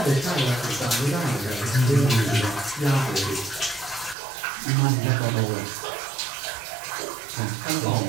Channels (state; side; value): drops out; left; at 4.2 s